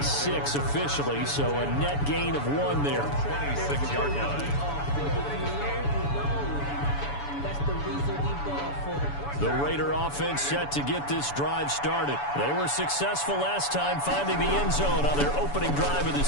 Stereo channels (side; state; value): right; late; 7.0 ms